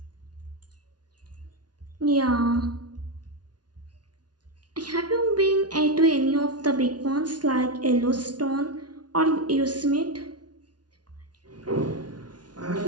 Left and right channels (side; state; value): left; late; 0.69 ms